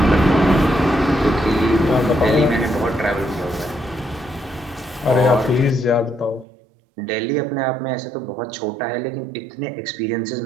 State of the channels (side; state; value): left; drops out; at 6.5 s